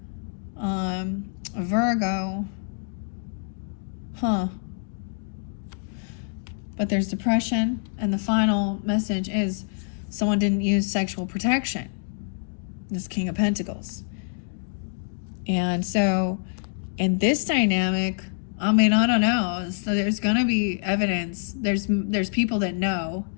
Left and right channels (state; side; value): silent; right; digital silence